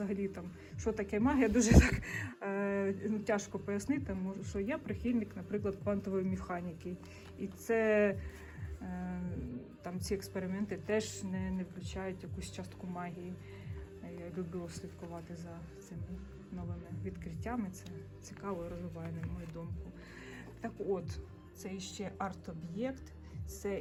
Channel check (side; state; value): both; identical; correlation 1.00